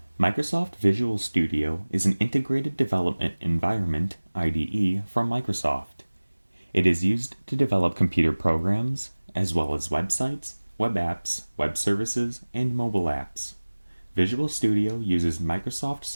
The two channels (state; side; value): inverted; both; correlation -1.00